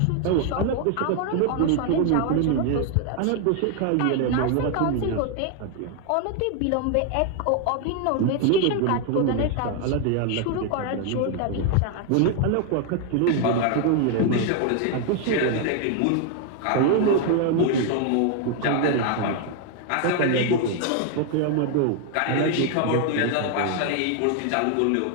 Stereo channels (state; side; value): different; both; correlation 0.00